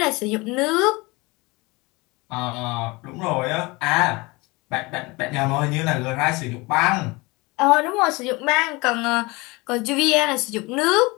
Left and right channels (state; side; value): quieter; right; 24.5 dB